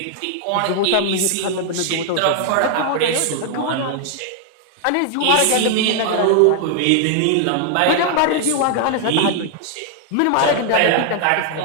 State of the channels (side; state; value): both; different; correlation 0.00